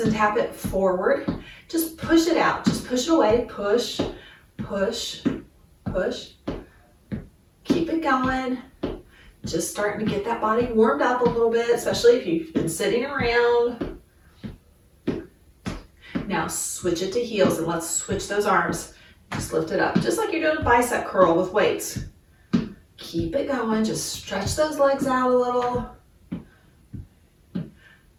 and tap it forward. Just push it out. Just push it away. Push, push, push. Keep it going. Just starting to get that body warmed up a little bit, especially if you've been sitting around. Now switch it to heels and let's switch those arms. Just lift it up, just like you're doing a bicep curl with weights. Keep it going, just stretch those legs out a little.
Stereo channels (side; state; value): both; identical; correlation 1.00